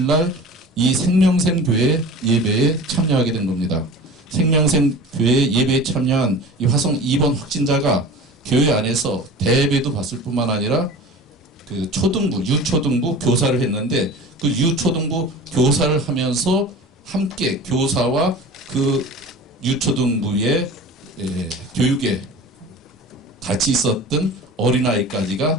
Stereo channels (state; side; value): normal; both; correlation 0.38